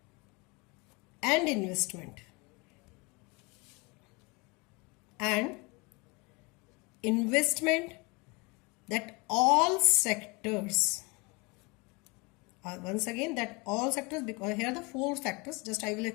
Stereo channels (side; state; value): right; quieter; 27.9 dB